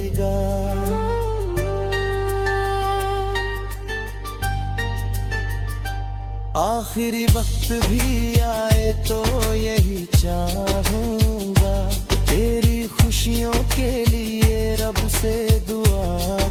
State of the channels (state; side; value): identical; both; correlation 1.00